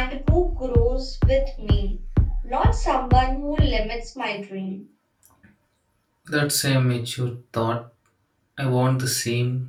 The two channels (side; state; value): both; identical; correlation 1.00